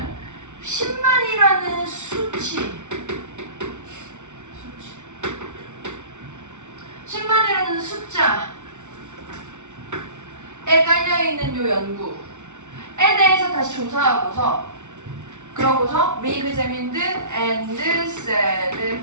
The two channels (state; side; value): late; left; 0.84 ms